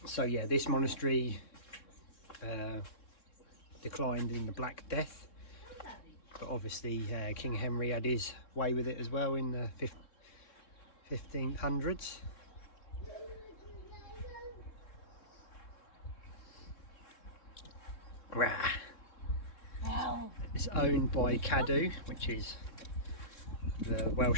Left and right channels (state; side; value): late; right; 3.7 ms